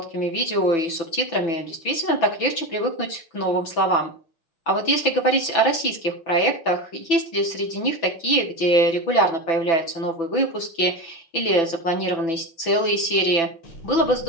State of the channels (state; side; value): late; right; 6.0 ms